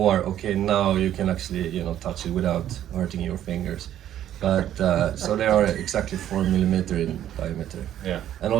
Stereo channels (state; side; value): quieter; left; 11.4 dB